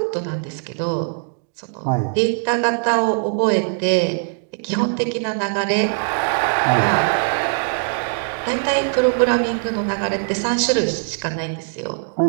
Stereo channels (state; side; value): silent; left; digital silence